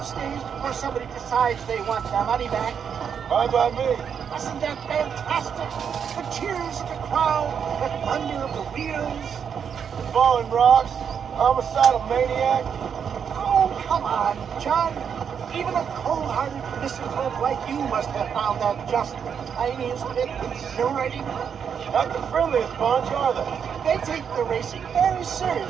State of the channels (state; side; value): quieter; left; 7.4 dB